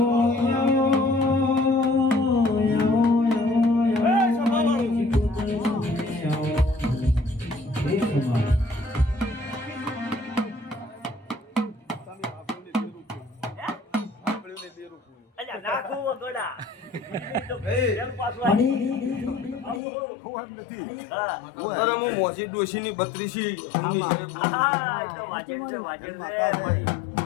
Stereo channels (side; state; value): right; drops out; at 19.8 s